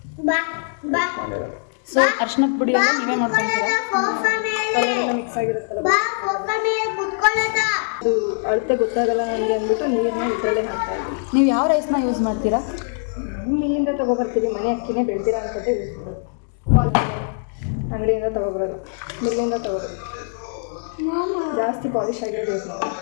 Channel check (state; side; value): silent; right; digital silence